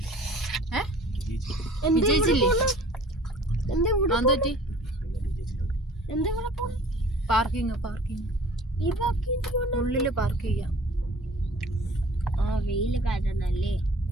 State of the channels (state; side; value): normal; both; correlation 0.48